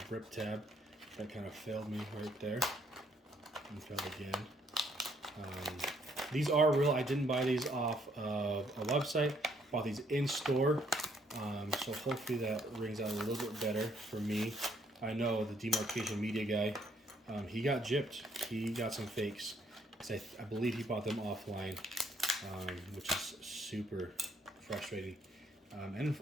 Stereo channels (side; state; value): both; normal; correlation 0.68